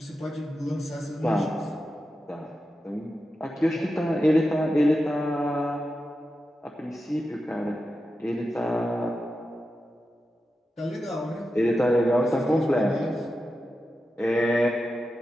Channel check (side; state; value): both; normal; correlation 0.90